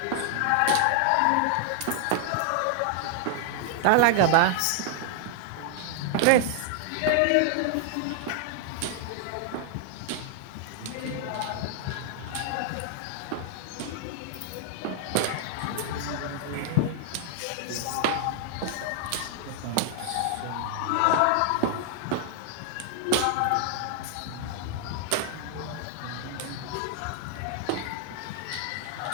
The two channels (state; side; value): different; both; correlation 0.00